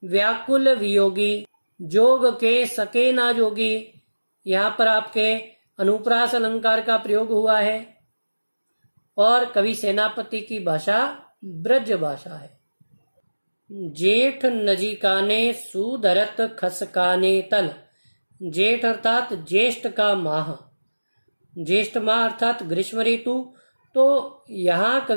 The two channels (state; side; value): inverted; both; correlation -1.00